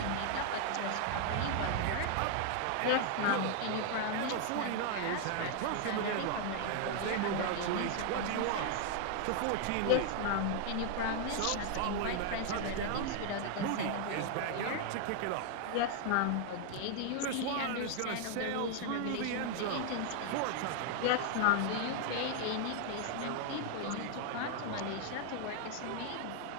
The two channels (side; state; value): both; different; correlation 0.00